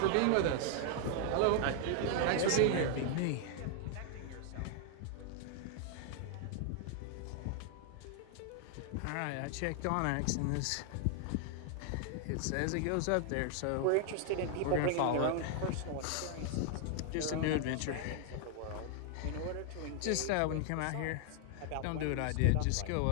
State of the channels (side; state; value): both; different; correlation 0.00